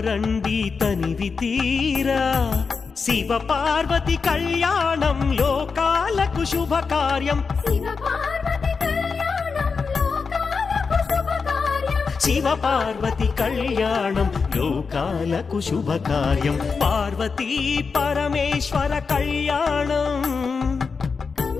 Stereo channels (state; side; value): quieter; right; 5.1 dB